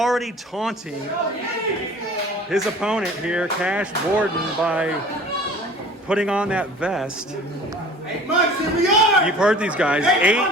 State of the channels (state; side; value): normal; both; correlation 0.45